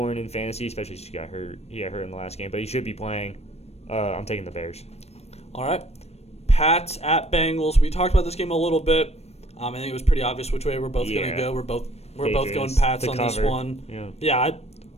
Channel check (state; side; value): late; right; 0.31 ms